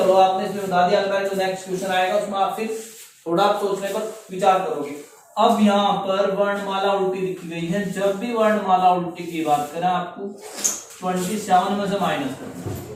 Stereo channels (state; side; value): identical; both; correlation 1.00